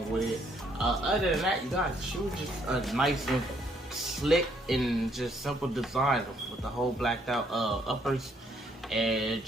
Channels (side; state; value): both; normal; correlation 0.69